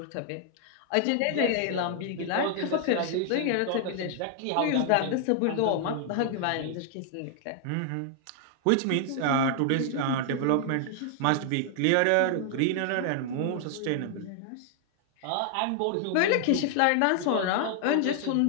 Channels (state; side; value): different; both; correlation 0.00